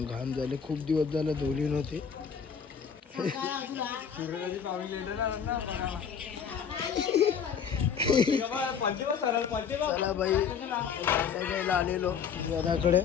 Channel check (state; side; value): quieter; right; 7.1 dB